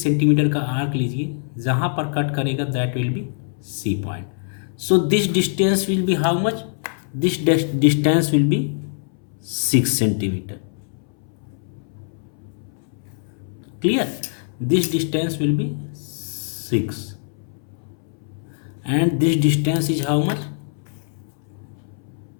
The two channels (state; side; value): silent; right; 63 dB below the other